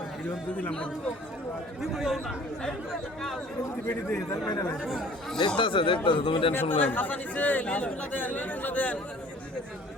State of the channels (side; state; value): both; normal; correlation 0.51